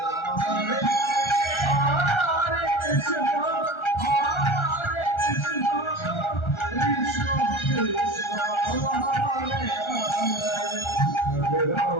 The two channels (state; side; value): late; right; 1.3 ms